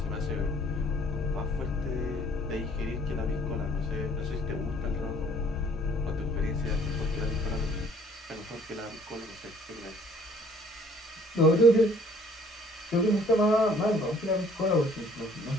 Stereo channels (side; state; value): both; normal; correlation 0.58